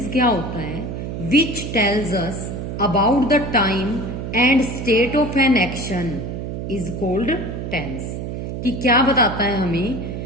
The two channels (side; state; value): right; noise; hum, 6 dB below the sound